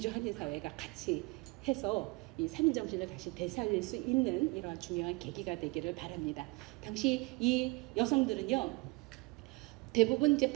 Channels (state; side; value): quieter; left; 25.9 dB